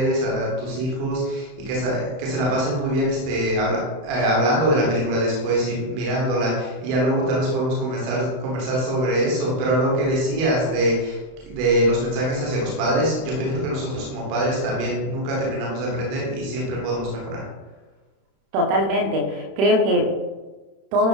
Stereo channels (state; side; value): late; left; 31 ms